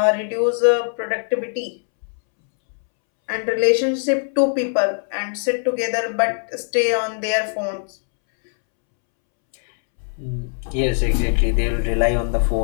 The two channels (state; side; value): silent; right; 65 dB below the other